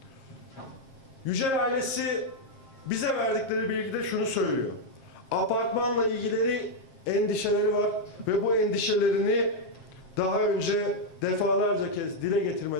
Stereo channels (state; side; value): late; right; 7.5 ms